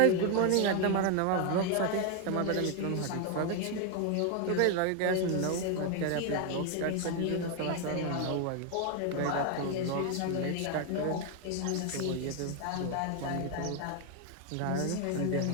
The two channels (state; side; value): different; both; correlation 0.01